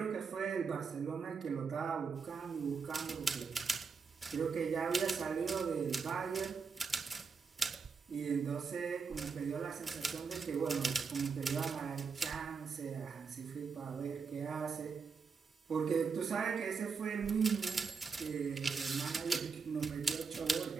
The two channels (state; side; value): quieter; left; 5.3 dB